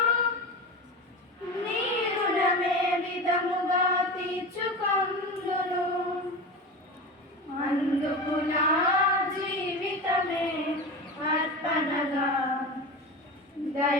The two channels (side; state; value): both; normal; correlation 0.26